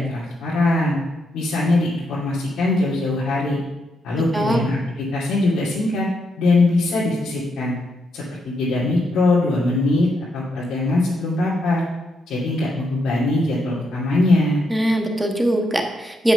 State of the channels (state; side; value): normal; both; correlation 0.80